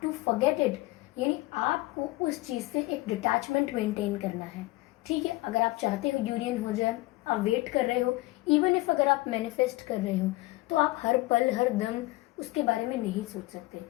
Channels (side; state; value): right; quieter; 20.4 dB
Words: to forget it. यानी आपको उस चीज से एक डिटैचमेंट मेंटेन करना है। ठीक है, अगर आप चाहते हो यूनियन हो जाए, आप वेट कर रहे हो, इवन इफ अगर आप मैनिफेस्ट कर रहे हो, तो आप हर पल हर दम उसके बारे में नहीं सोच सकते।